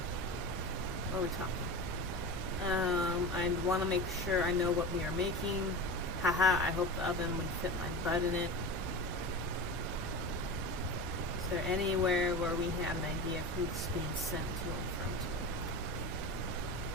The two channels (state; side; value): normal; both; correlation 0.27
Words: What are we talking? I'd want to make sure I know what we are making. Haha, I hope the oven would fit my butt in it. Is there anywhere where we have an idea of who's being sent to and